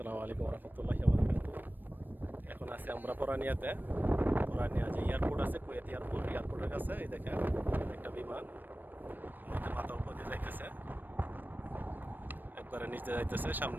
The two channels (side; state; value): left; late; 0.091 ms